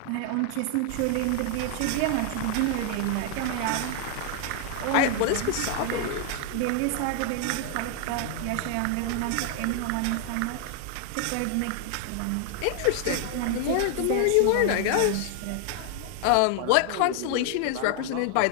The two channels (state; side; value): different; both; correlation 0.00